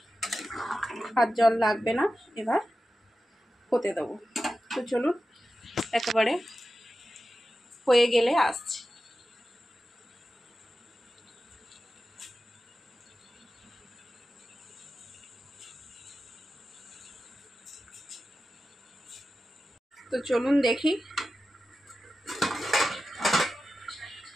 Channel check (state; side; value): normal; both; correlation 0.93